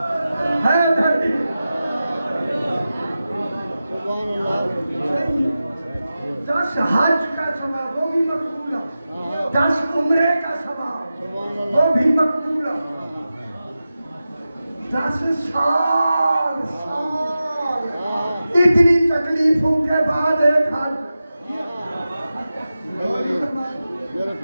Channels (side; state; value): both; inverted; correlation -0.93